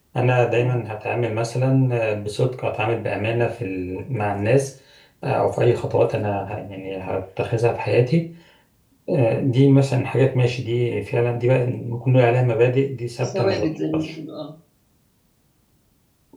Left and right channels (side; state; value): both; identical; correlation 1.00